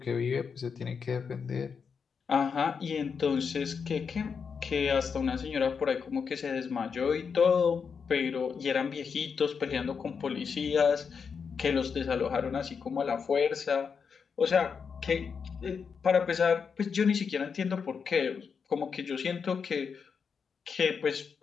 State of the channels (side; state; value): right; quieter; 6.1 dB